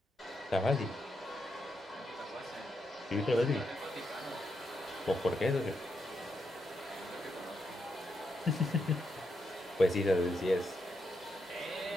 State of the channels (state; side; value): normal; both; correlation 0.82